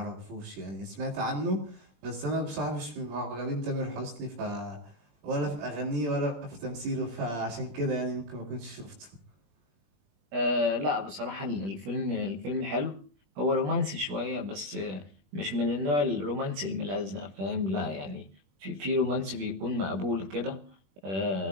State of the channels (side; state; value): left; late; 21 ms